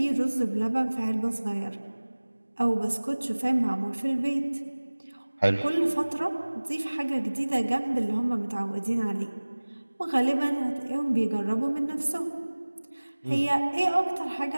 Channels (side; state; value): both; inverted; correlation -1.00